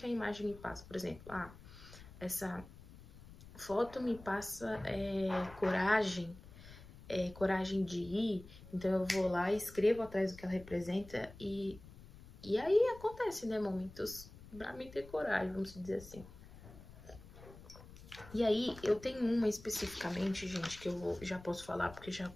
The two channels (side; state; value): left; noise; rumble, 18 dB below the sound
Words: a imagem me passa. Por exemplo, essa foto me passa coragem de ir, então eu vou lá e escrevo atrás do que ela representa e aí acontece, né, momentos pra mim ter coragem, vamos dizer assim. E aí, eu tenho uma especificamente, gente, que eu já posso falar porque já